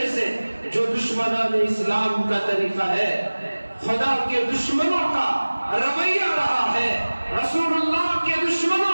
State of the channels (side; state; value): both; inverted; correlation -1.00